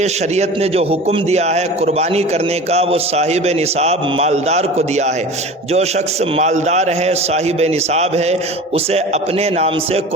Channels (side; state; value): both; normal; correlation 0.36